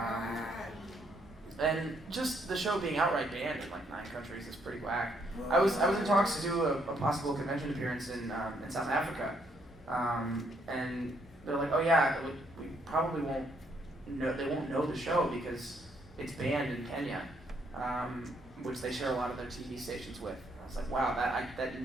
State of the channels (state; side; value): normal; both; correlation 0.72